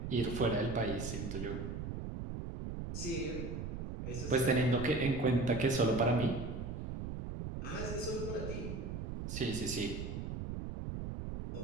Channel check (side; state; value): right; noise; rumble, 5 dB below the sound